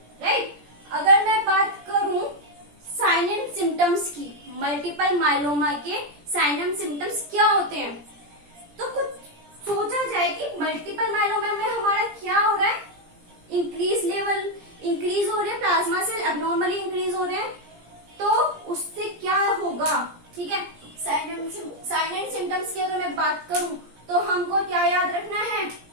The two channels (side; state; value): left; late; 17 ms